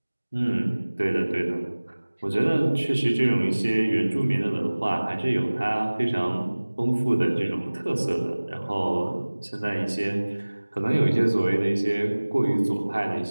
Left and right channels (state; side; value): inverted; both; correlation -1.00